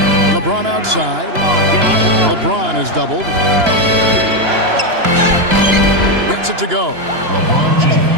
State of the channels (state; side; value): late; left; 2.9 ms